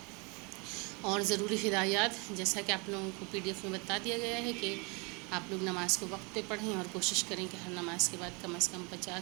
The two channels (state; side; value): quieter; left; 30.5 dB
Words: اور ضروری ہدایات جیسا کہ آپ لوگوں کو PDF میں بتا دیا گیا ہے کہ آپ لوگ نماز کو وقت پہ پڑھیں، اور کوشش کریں کہ ہر نماز کے بعد کم از کم